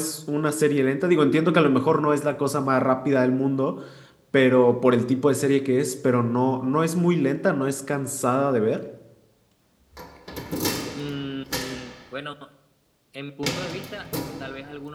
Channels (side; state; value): both; identical; correlation 1.00